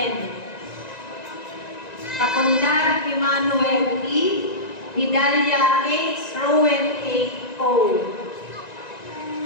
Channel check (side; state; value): right; late; 1.9 ms